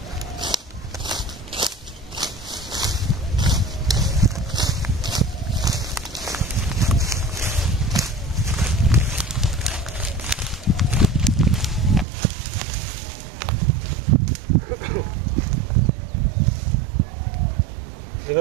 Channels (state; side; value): drops out; left; at 12.1 s